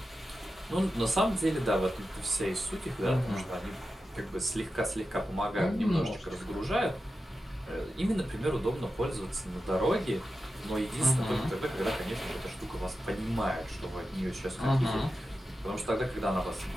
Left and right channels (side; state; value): both; normal; correlation 0.91